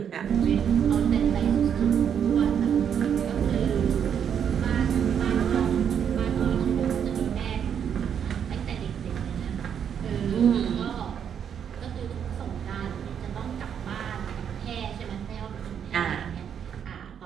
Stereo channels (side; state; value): left; quieter; 8.2 dB